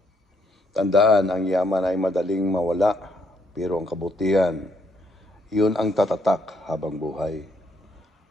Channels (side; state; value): both; normal; correlation 0.72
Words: Tandaan, ang yaman ay madaling mawala, pero ang kabutihan, yun ang tatatak habang buhay.